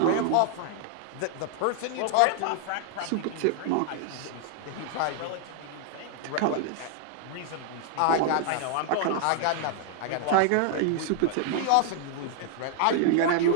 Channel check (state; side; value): different; both; correlation 0.00